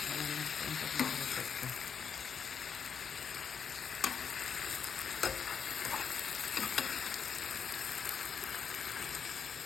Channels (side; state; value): right; quieter; 6.7 dB